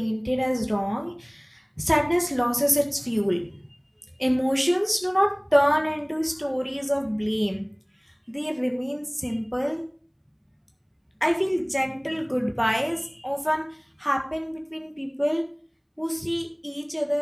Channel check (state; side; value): identical; both; correlation 1.00